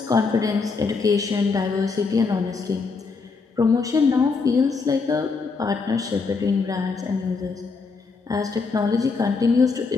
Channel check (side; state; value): right; quieter; 4.6 dB